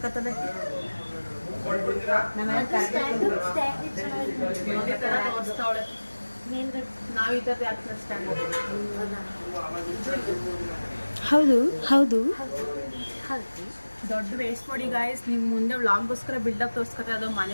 ಹೌದು ಹೌದು. ದೊಡ್ಡ ವೇಸ್ಟ್ ಮಾಡಿ ಗಾಯ್ಸ್, ನಿಮ್ ಮುಂದೆ ವ್ಲಾಗ್ಗೋಸ್ಕರ ಬಿಲ್ಡಪ್ ತೋರಿಸ್ಕೊತಾರೆ. ಅದು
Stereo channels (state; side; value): inverted; both; correlation -1.00